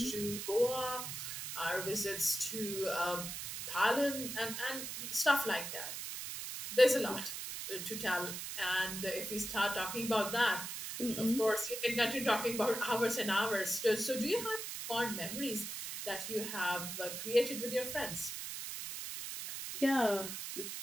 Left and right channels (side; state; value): right; noise; hiss, 6 dB below the sound